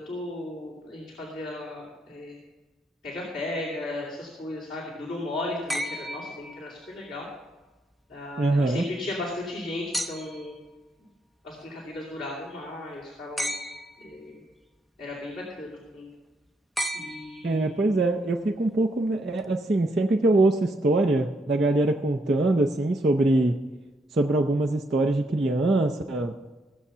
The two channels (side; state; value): both; normal; correlation 0.75